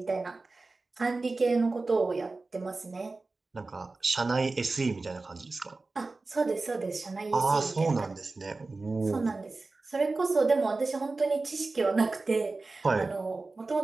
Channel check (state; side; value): quieter; left; 3.5 dB